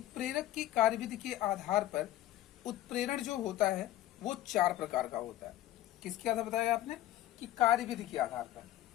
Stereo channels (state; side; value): quieter; right; 14.1 dB